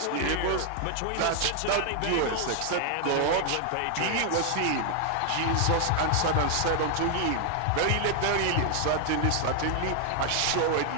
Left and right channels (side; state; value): both; different; correlation 0.00